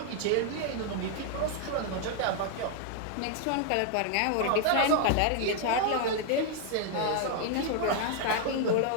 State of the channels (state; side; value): different; both; correlation 0.00